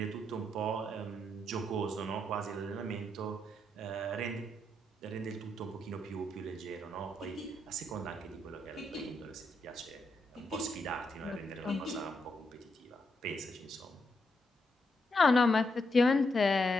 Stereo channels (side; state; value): both; normal; correlation 0.81